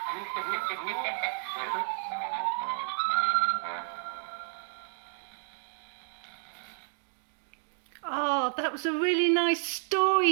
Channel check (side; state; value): left; silent; digital silence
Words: Oh, that was a really nice